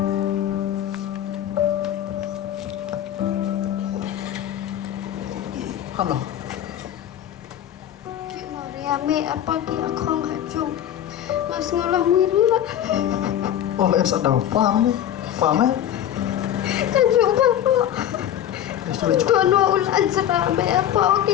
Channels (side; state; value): right; quieter; 10.9 dB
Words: Halo. Ki Mariame apa ki aku ngajung. Mas ngolah mirna. Oh, em sợ đầu paham nih, paham ya? Kajung bapak. Sudah cukup. Tuan ulan serame apa ki